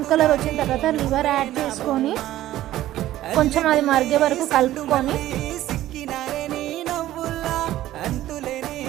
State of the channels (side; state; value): left; quieter; 14.2 dB